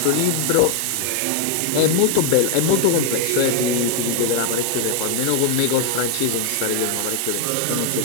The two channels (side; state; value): both; different; correlation 0.01